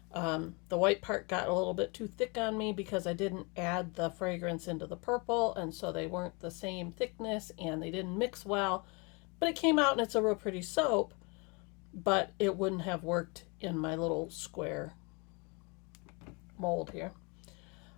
The white part got a little bit too thick on me because I didn't add the fragrance into the purple, and so they weren't the same thickness and they didn't mix well. But it came out and it's a real pretty soap, but it wouldn't have worked in my little square mold here.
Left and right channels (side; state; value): right; quieter; 30.2 dB